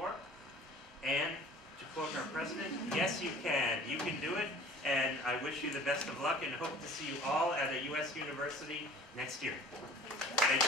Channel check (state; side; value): normal; both; correlation 0.47